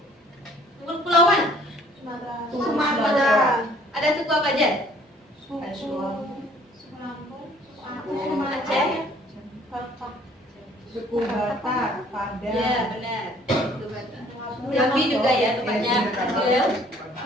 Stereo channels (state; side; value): normal; both; correlation 0.57